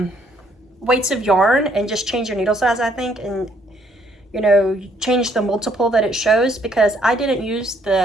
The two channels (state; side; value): normal; both; correlation 0.67